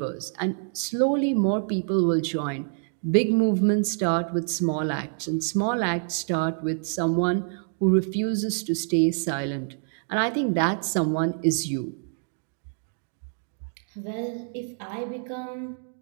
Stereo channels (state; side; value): silent; left; 61 dB below the other